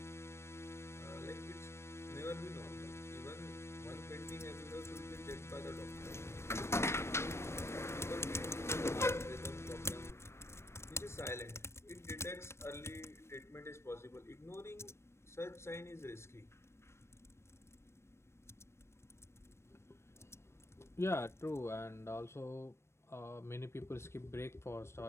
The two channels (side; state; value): right; late; 0.13 ms